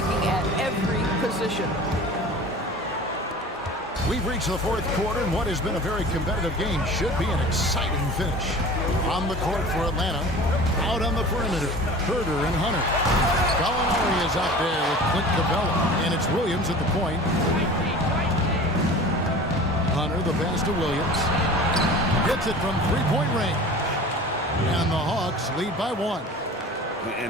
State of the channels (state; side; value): normal; both; correlation 0.39